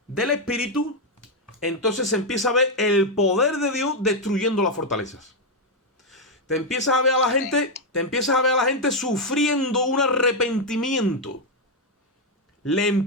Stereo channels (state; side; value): normal; both; correlation 0.02